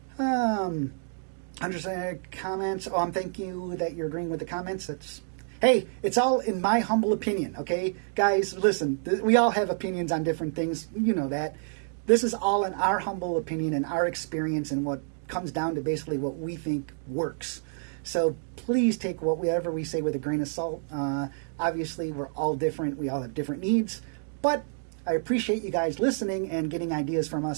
Understand comments. Thank you that you're agreeing with the comments. Hey, it's all in my humble opinion, okay? Guys, listen, we all have opinions on different things. You know that. This is all in our humble opinion and our experience and what comes down to basically what we think works. So please take whatever we say with a grain of salt. Obviously, we're all different. We all have different needs. But I appreciate you guys listening and getting ideas from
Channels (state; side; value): silent; left; digital silence